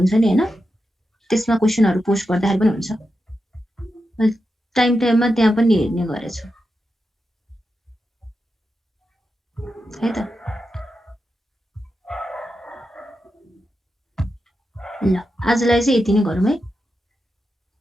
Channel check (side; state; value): both; normal; correlation 0.89